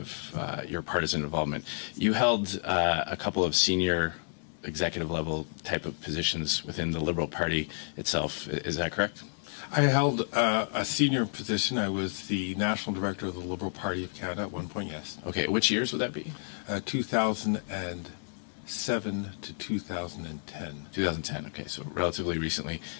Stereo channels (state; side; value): silent; right; digital silence